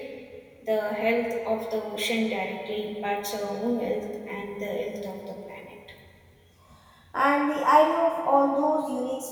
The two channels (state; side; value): identical; both; correlation 1.00